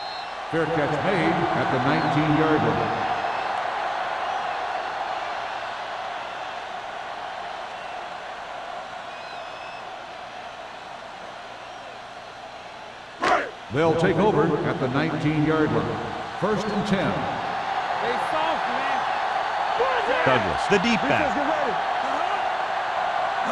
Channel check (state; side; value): identical; both; correlation 1.00